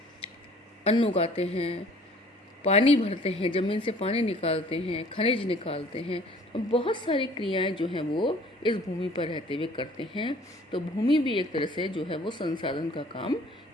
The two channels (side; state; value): both; normal; correlation 0.53